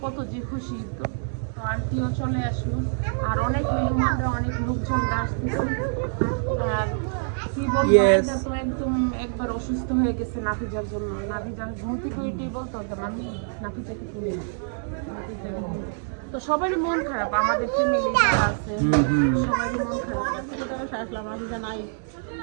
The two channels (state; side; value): silent; left; digital silence